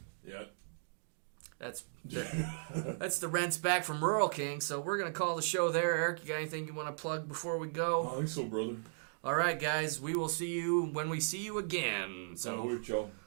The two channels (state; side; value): silent; left; digital silence